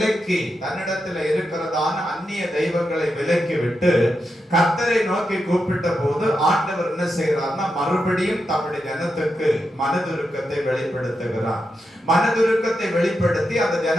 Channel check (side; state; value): both; normal; correlation 0.86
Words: விலக்கி விட்டு கர்த்தரை நோக்கி கூப்பிட்ட போது ஆண்டவர் என்ன செய்யறார்னா மறுபடியும் தம்முடைய ஜனத்துக்கு மனதுருக்கத்தை வெளிப்படுத்துகிறார். மனதுருக்கத்தை வெளிப்படுத்தி அந்த